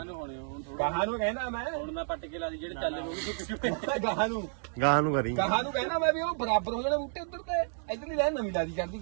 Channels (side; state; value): left; silent; digital silence